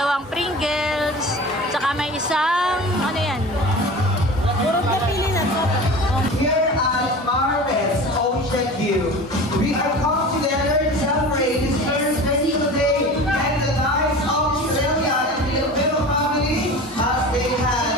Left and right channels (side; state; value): both; normal; correlation 0.36